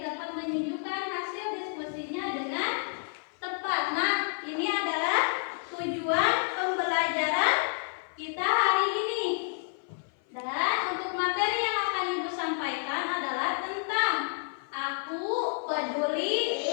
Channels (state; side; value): silent; right; 55 dB below the other